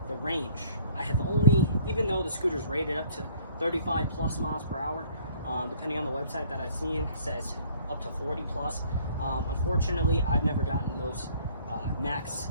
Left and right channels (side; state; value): both; inverted; correlation -0.57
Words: the range, I have only, even though the scooter is rated up to 35 plus miles per hour, depending on the website that I've seen, says up to 40 plus. Unfortunately, I've never gotten those max